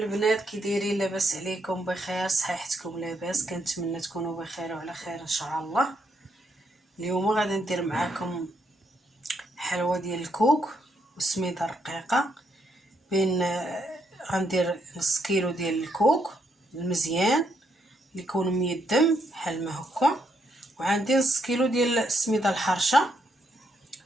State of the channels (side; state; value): both; normal; correlation 0.76